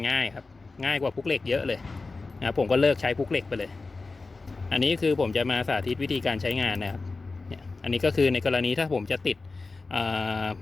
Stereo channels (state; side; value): quieter; right; 3.8 dB